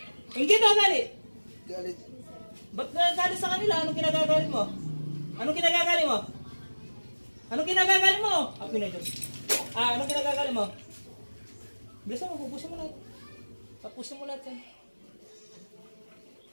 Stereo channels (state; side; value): inverted; both; correlation -1.00